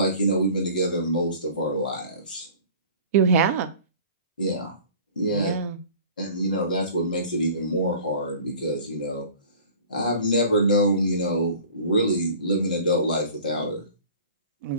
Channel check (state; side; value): inverted; both; correlation -0.45